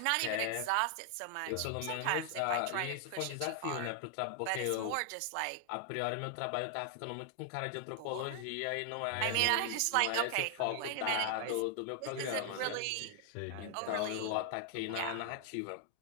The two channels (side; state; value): both; different; correlation 0.00